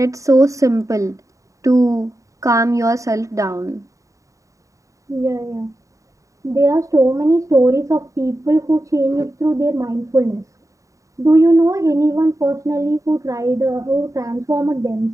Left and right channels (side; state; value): left; late; 0.16 ms